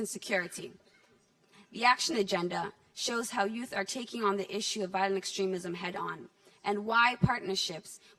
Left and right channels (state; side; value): identical; both; correlation 1.00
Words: Security. The action agenda shows how youth are taking on the issue of violent extremism head-on and why partnerships